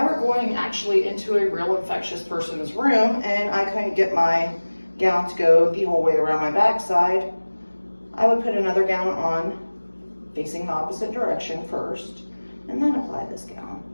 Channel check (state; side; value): inverted; both; correlation -1.00